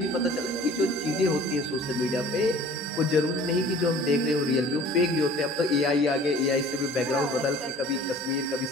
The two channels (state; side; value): normal; both; correlation 0.48